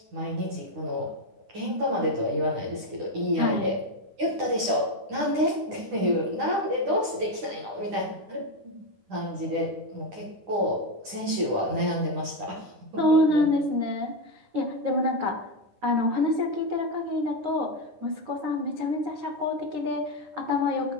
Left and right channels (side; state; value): left; late; 9.9 ms